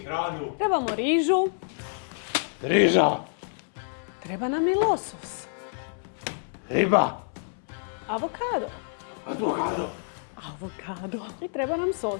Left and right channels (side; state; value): right; silent; 59 dB below the other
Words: Trebamo rižu, Riža, treba nam i losos, riba, avokado, avokado, i treba nam